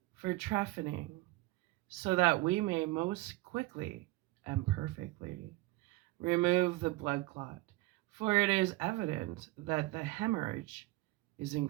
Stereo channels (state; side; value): quieter; left; 19.7 dB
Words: for trephining, so that we may most quickly and perfectly remove the blood clot, for it is evident that the hemorrhage is